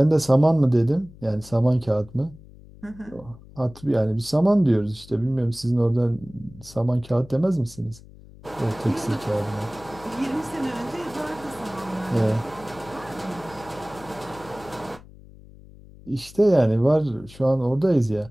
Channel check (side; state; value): left; noise; hum, 21 dB below the sound